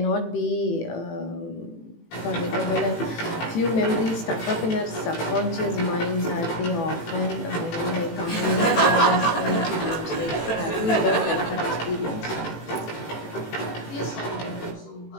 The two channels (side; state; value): right; late; 18 ms